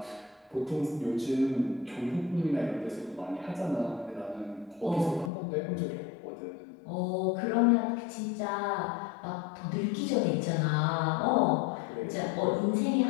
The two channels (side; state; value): right; drops out; at 5.3 s